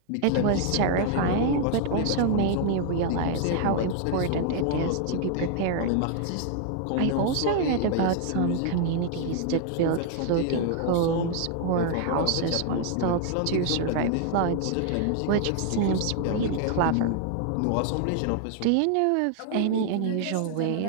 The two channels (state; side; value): different; both; correlation 0.00